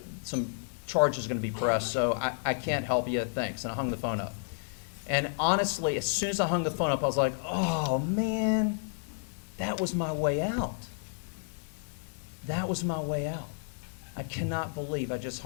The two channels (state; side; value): silent; right; digital silence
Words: some charges are going to be pressed, so I can't help you. Thanks." And I hung the phone up. And honestly, as soon as I hung the phone up, I was like, oh, man, that was my way out. That was my way out. I cannot believe I just